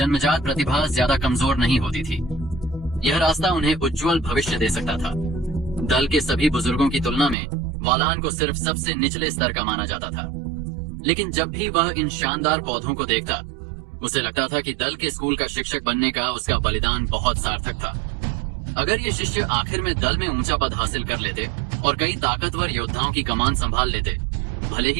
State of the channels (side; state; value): left; drops out; at 7.4 s